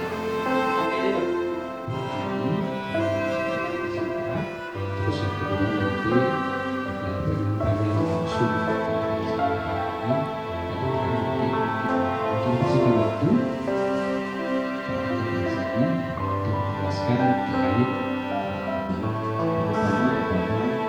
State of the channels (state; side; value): identical; both; correlation 1.00